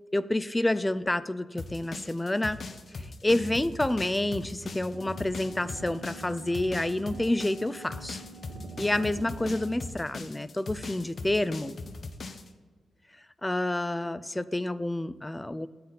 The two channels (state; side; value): normal; both; correlation 0.98